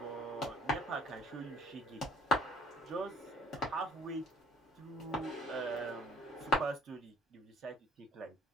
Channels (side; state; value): both; normal; correlation 0.56